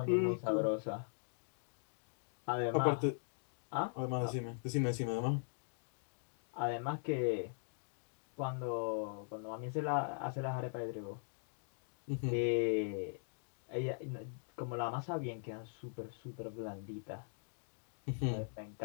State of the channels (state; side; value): silent; right; digital silence